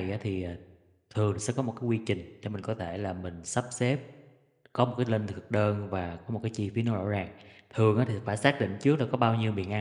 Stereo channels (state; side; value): identical; both; correlation 1.00